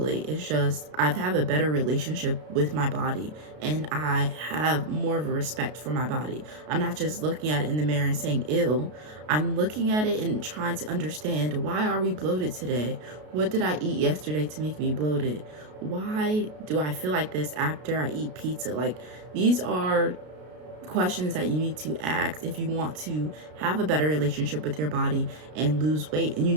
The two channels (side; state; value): left; late; 33 ms